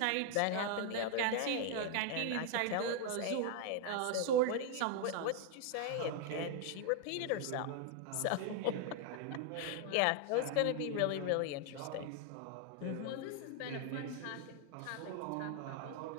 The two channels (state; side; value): different; both; correlation 0.00